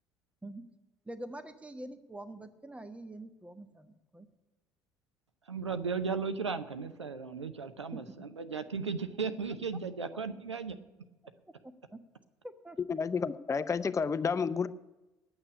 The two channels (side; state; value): both; normal; correlation 0.36